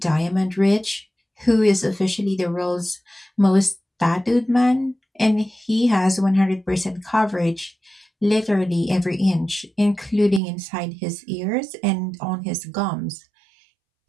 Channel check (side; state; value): left; drops out; at 10.4 s